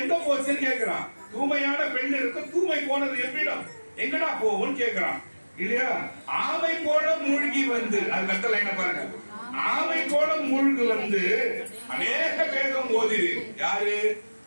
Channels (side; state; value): both; inverted; correlation -1.00